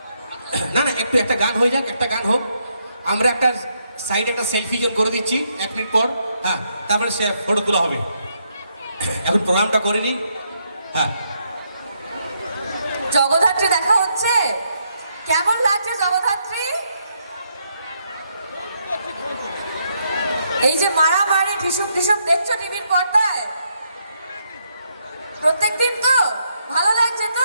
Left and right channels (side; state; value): both; inverted; correlation -0.76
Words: না না, একটু একটা গান হয়ে যাক, একটা গান হোক, আমরা একটা সাইডে একটা সেলফি জোন করে দিচ্ছি 1 মিনিট পর। হ্যাঁ, তারপরে সে ফটো তোলা হবে। এখন প্রোগ্রামটা করে নি। হ্যাঁ, জগদ্ধাত্রী দেখা হচ্ছে, কেমন লাগছে জগদ্ধাত্রী? এই যে মারামারি ঢিসুম ঢিসুম দেখছো টিভির পর্দায় প্রত্যেকদিন, তো ভালো লাগছে